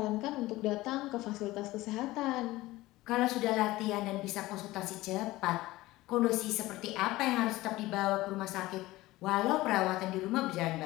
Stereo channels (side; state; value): right; quieter; 18.3 dB